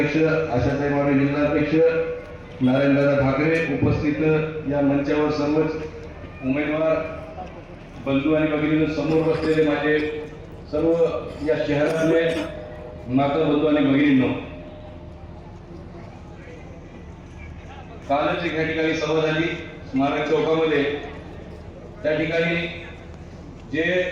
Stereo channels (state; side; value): identical; both; correlation 1.00